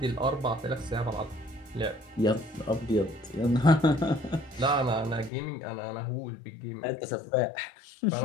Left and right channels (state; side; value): drops out; right; at 5.3 s